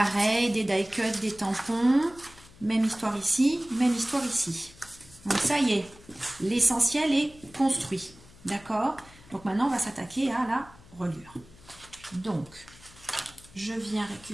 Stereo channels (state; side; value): noise; left; hum, 23 dB below the sound